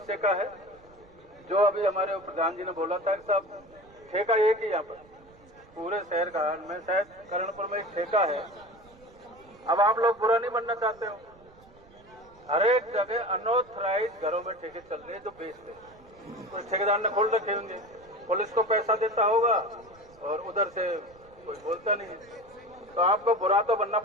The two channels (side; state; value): right; noise; rumble, 26 dB below the sound